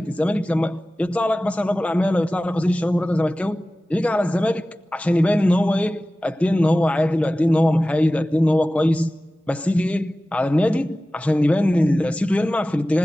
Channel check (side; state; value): both; normal; correlation 0.97